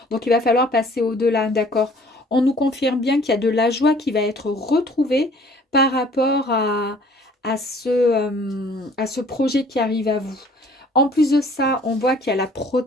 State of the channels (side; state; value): both; normal; correlation 0.54